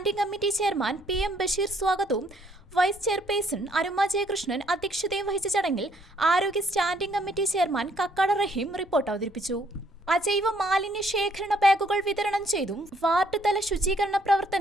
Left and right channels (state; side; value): normal; both; correlation 0.66